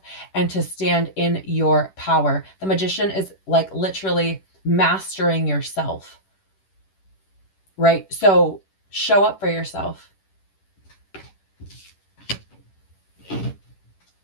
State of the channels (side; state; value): right; late; 10 ms